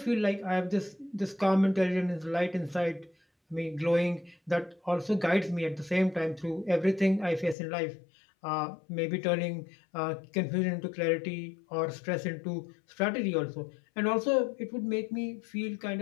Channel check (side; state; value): right; drops out; at 7.6 s